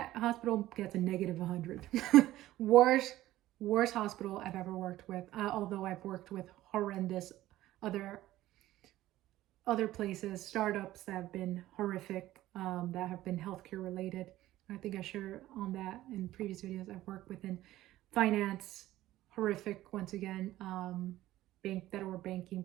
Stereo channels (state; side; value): quieter; left; 15.2 dB